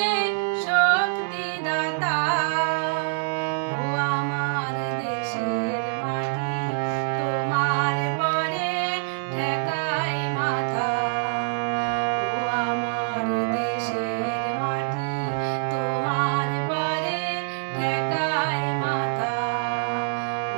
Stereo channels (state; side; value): silent; left; 62 dB below the other